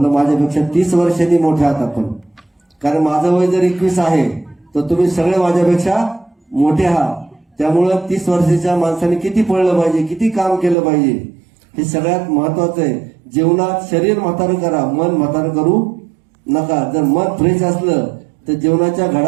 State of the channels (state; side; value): drops out; left; at 10.8 s